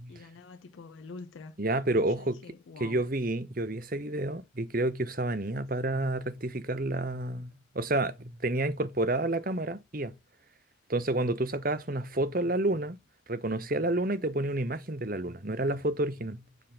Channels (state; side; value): normal; both; correlation 0.35